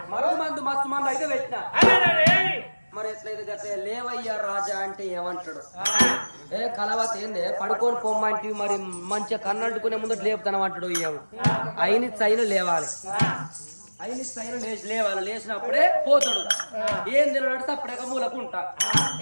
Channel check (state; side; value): inverted; both; correlation -1.00